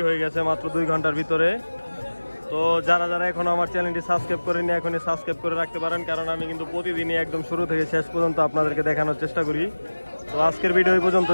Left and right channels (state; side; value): inverted; both; correlation -1.00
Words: হয়ে গেছে মাত্র 2 ঘন্টার ভিতরে। তো যারা যারা এখন আমার চ্যানেলটি সাবস্ক্রাইব করেনি এখনই সাবস্ক্রাইব করে রাখতে পারেন, কারণ আমি কিন্তু প্রতিদিনই একদম শুরু থেকে শেষ পর্যন্ত আপনাদেরকে দেখানোর চেষ্টা করি। তো আজকের ভিডিও এই